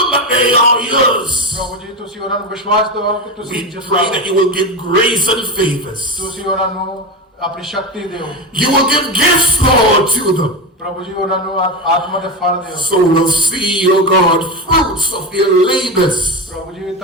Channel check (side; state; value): both; normal; correlation 0.17